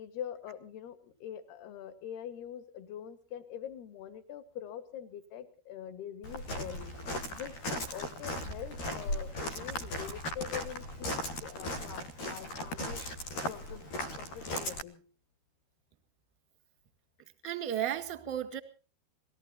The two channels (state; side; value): late; right; 13 ms